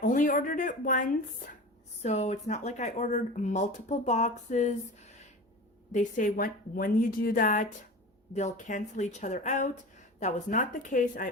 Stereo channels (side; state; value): both; normal; correlation 0.33